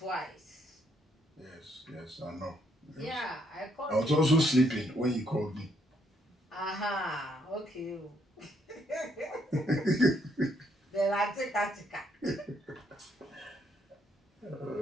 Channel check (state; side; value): normal; both; correlation 0.72